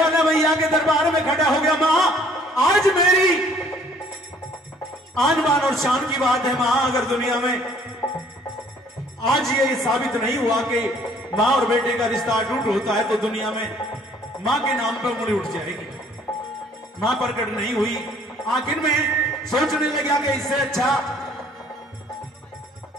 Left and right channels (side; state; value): both; normal; correlation 0.59